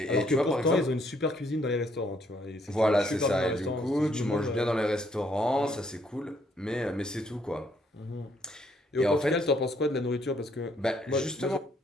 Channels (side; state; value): both; normal; correlation 0.69